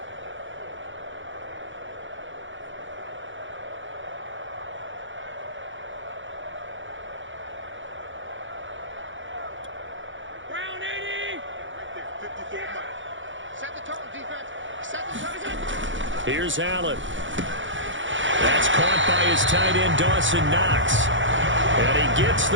Here's Allen. That's caught by his tight end, Dawson Knox. And he gets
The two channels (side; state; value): left; late; 0.56 ms